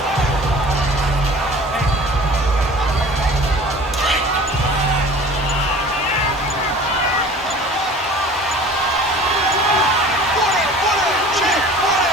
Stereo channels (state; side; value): normal; both; correlation 0.44